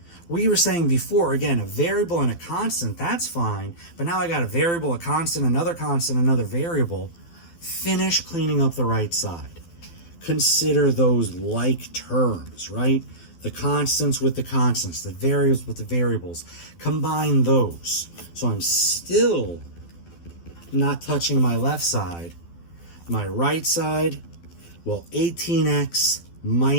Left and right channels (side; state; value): right; late; 12 ms